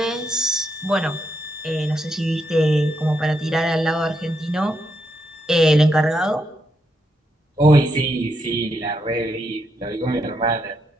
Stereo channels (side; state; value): both; normal; correlation 0.80